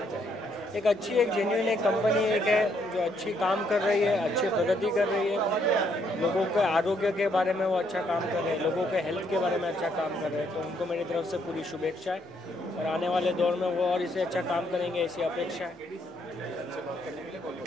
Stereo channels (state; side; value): normal; both; correlation 0.71